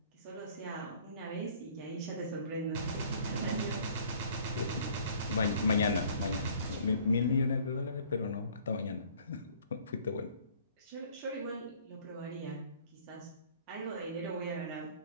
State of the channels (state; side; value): inverted; both; correlation -0.54